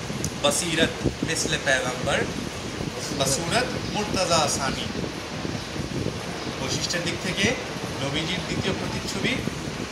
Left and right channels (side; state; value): both; identical; correlation 1.00